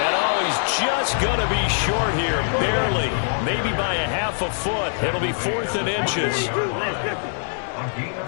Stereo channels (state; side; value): silent; right; digital silence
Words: he's just going to be short here, barely. Maybe by a half a foot. It'll be 4th and inches.